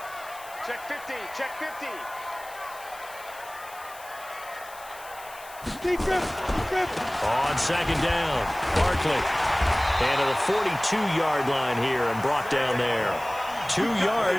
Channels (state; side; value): noise; left; hiss, 19 dB below the sound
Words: Check 15. Check 15. On 2nd down, Barkley. And to the 42-yard line here and brought down there. 2